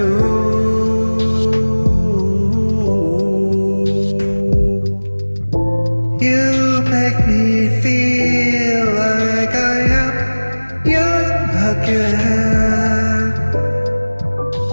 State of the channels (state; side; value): inverted; both; correlation -1.00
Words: You make me feel like I am young again.